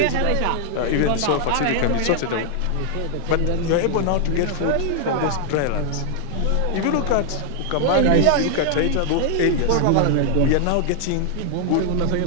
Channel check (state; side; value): different; both; correlation 0.00